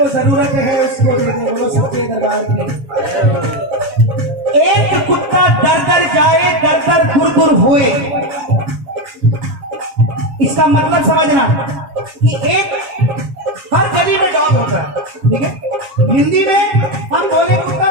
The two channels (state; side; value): late; left; 7.2 ms